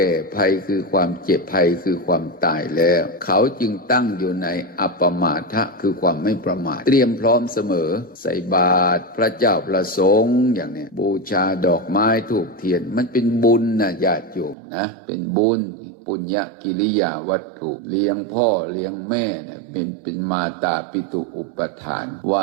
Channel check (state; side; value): drops out; left; at 14.6 s